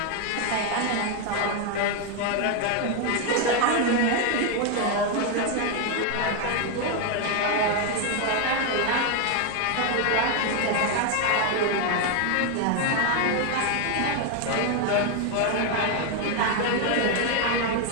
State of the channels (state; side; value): different; both; correlation 0.01